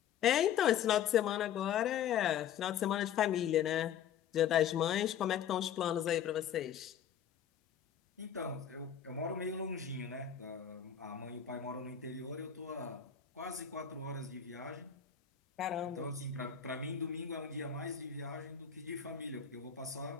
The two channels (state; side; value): quieter; right; 8.9 dB